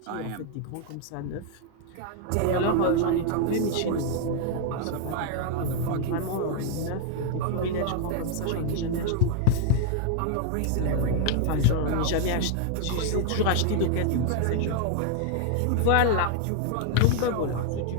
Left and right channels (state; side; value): different; both; correlation 0.00